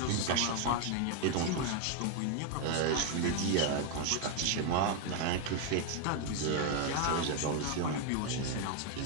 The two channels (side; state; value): both; different; correlation 0.01